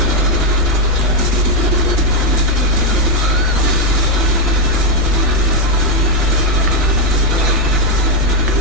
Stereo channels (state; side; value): noise; right; hum, 8 dB below the sound